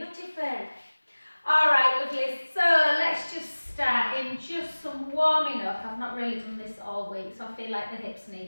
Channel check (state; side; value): inverted; both; correlation -1.00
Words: All right, lovely. So let's just start in just some warming up. I've not really done this all week, so I feel like the hips